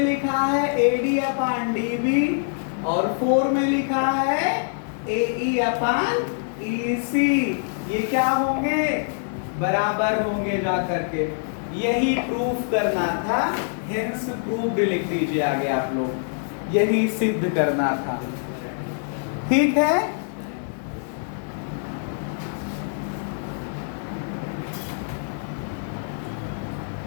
लिखा है AD अपन DB और 4 में लिखा है AE अपन EC। ये क्या होंगे? बराबर होंगे जा करके। यही प्रूफ करना था, हेंस प्रूव्ड लिख दीजिए आगे आप लोग। यही सिद्ध करना था। ठीक है।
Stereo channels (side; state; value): right; silent; digital silence